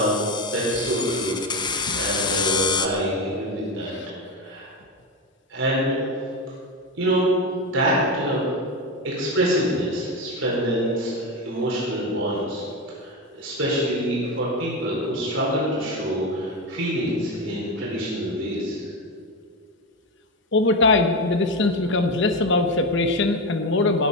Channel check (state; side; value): normal; both; correlation 0.16